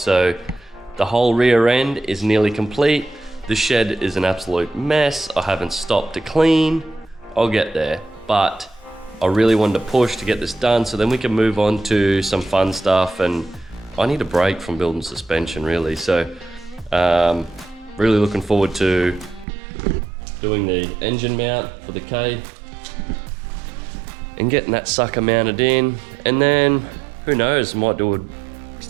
the whole rear end is nearly complete. The shed is an absolute mess. I haven't stopped to clean. I'll get there, but I really wanted to push to get this done so then we can move on to some fun stuff, and I need a break from building suspension really. So really looking forward to doing the engine mount for the K and getting that sucker mounted in, and then who knows, might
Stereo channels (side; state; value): left; drops out; at 19.5 s